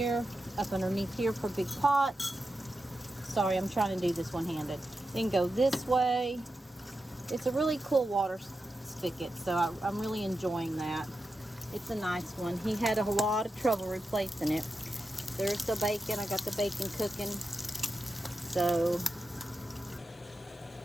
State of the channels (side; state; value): both; normal; correlation 0.90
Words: for big pots. Sorry, I'm trying to do this one-handed. Then go this way. It's a really cool water spigot, so I'm really enjoying that. It's a nice one. He had a lot of trouble replacing it. There's the bacon. I got the bacon cooking. So,